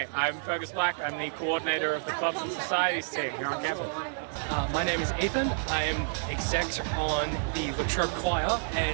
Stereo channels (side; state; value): left; silent; digital silence